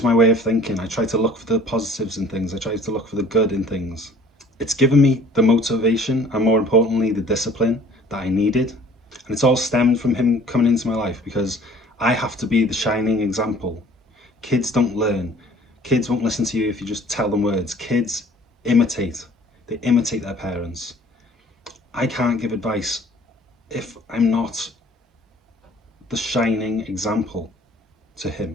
my way of thinking. I try to look for the positives in things. I try to look for the good in things. It's given me the motivation and, more importantly, the discipline that I needed. And it's all stemmed from him coming into my life, because I have to be the shining example. Kids don't learn. Kids won't listen to you if you just tell them words. Kids imitate. They imitate their parents. I can't give advice if I'm not the shining example to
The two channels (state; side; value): normal; both; correlation 0.51